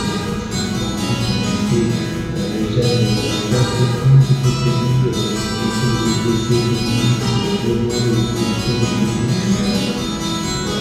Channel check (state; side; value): identical; both; correlation 1.00